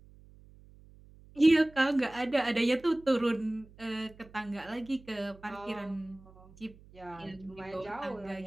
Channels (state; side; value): noise; right; hum, 23 dB below the sound